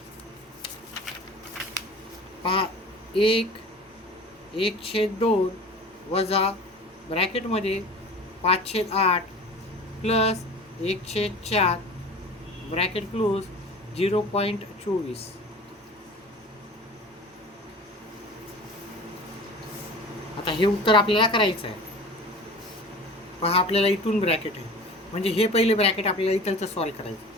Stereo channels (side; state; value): both; normal; correlation 0.40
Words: पहा, 1/2 वजा ब्रॅकेटमध्ये 5/8 प्लस 1/4 ब्रॅकेट क्लोज 0.24. आता हे उत्तर आपल्याला करायचं आहे. पहा, आपल्याला इथून ब्रॅकेट आहे, म्हणजे हे पहिले ब्रॅकेट आपल्याला इथलचं सॉल्व करायचं.